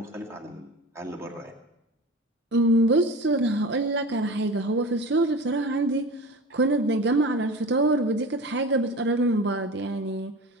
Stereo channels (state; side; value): normal; both; correlation 0.33